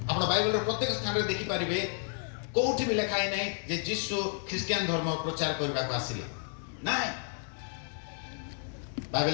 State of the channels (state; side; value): silent; right; 57 dB below the other